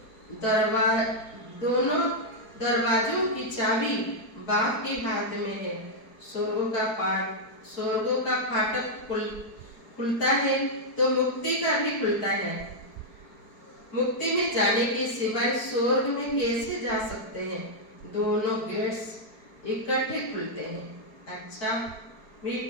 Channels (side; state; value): right; late; 4.6 ms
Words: दरवाजों की चाबी बाप के हाथ में है। स्वर्गों का फाटक खुलता है तो मुक्ति का भी खुलता है। मुक्ति में जाने के सिवाय स्वर्ग में कैसे जा सकते हैं? दोनों गेट्स इकट्ठे खुलते हैं। अच्छा,